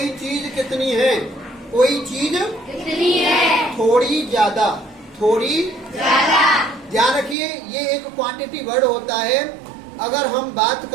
चीज कितनी है, कोई चीज कितनी है, थोड़ी ज्यादा, थोड़ी ज्यादा। ध्यान रखिए ये एक क्वांटिटी वर्ड होता है। अगर हम बात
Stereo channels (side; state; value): left; drops out; at 7.4 s